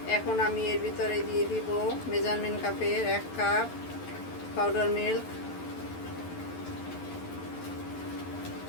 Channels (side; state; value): right; late; 11 ms